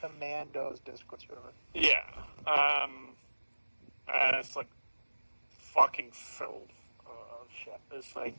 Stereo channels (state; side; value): inverted; both; correlation -1.00